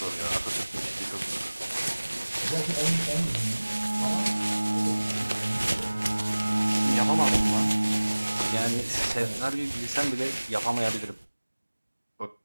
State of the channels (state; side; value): inverted; both; correlation -1.00